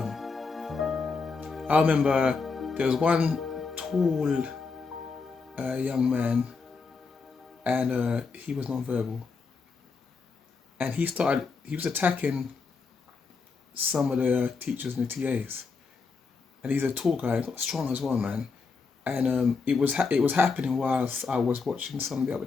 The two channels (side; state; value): right; quieter; 4.7 dB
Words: I remember there was one tall young man, and he was non-verbal. And he was attacking some of the teachers and the TAs. And he's a tall guy, got strong as well, man. And it was happening whilst I was watching some of the other